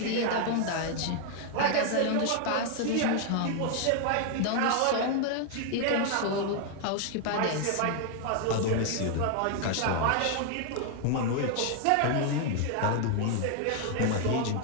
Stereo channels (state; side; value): different; both; correlation 0.00